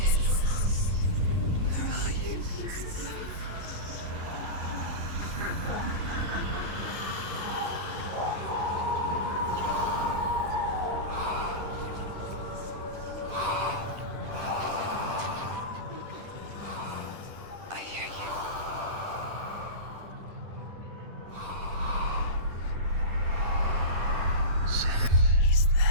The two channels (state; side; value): late; left; 10 ms